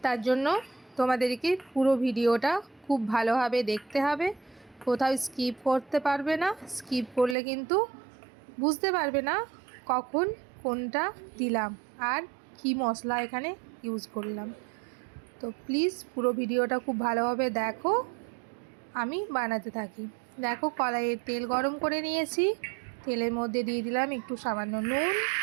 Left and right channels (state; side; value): drops out; left; at 7.4 s